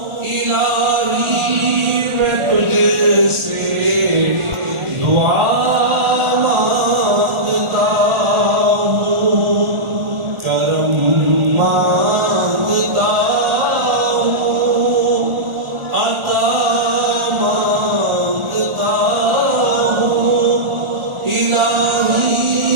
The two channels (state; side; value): late; left; 1.4 ms